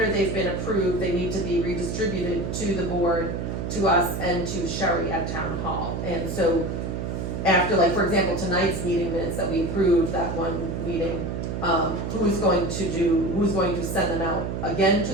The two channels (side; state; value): right; noise; hum, 3 dB below the sound